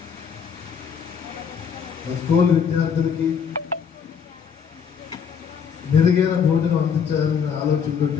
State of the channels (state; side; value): quieter; right; 7.0 dB